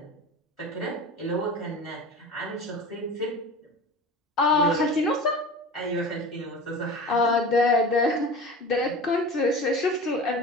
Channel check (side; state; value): both; normal; correlation 0.34